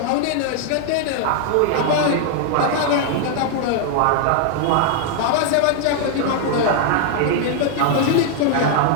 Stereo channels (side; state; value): both; different; correlation 0.00